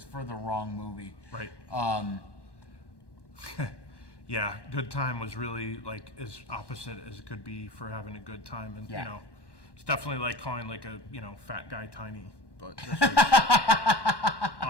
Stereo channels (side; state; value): right; late; 1.1 ms